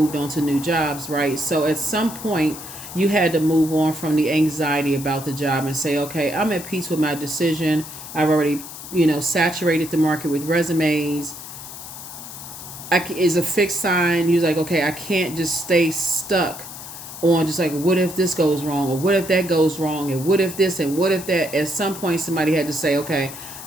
on to new jobs, right? So at some point you had to move on from the anxiety about the job and say, okay, I'm at peace with my decision. I've already, saturated the market with resumes. Is a fixed sign. You're like, okay, I can't just stay stuck on just like, what if this goes wrong, or what if that goes wrong, and what if this and what if that. At some point somebody had to say, okay,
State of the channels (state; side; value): noise; left; hiss, 12 dB below the sound